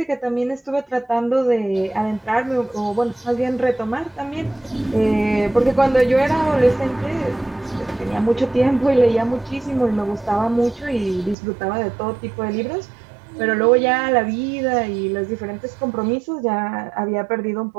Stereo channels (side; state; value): left; drops out; at 11.4 s